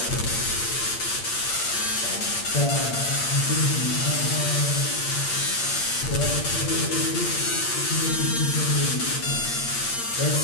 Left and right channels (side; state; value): right; late; 8.6 ms